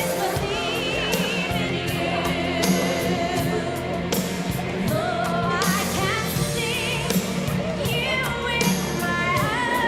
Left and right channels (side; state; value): both; identical; correlation 1.00